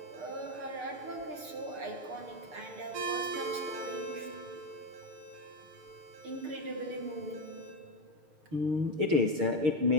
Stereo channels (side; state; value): left; late; 6.7 ms